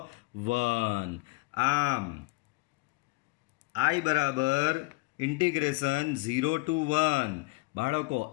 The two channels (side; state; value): right; quieter; 25.6 dB